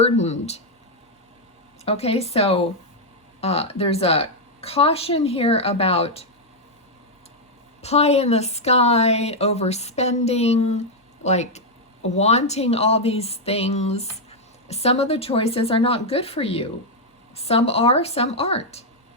Okay, so there's a caution here about pie in the sky, overspending, like wanting all these things. Some of the choices are not good for you. Some are, some aren't.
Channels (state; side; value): normal; both; correlation -0.01